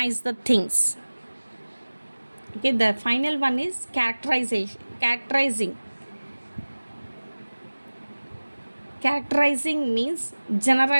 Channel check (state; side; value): inverted; both; correlation -1.00